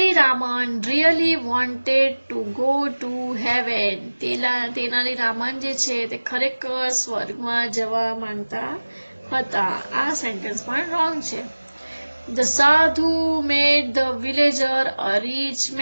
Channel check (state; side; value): inverted; both; correlation -1.00